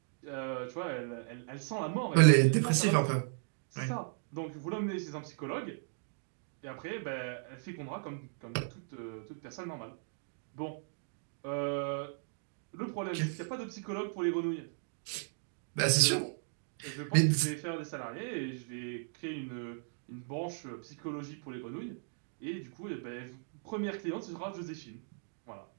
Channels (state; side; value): silent; left; digital silence